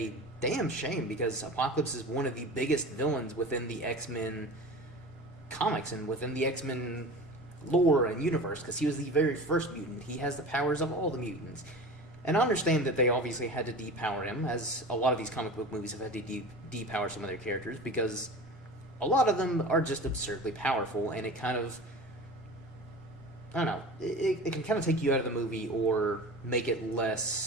damn shame because Apocalypse is one of the biggest villains within the X-Men comics and within the X-Men lore and universe, because he was the very first mutant. He has the powers of all the mutants. And I understand that they obviously had to depower him, as a lot of these comic book movies have had to depower some of their characters, because a lot of them are just absurdly powerful, and it kind of, I don't know, it can kind of take you out of the movie or make it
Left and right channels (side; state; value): both; normal; correlation 0.35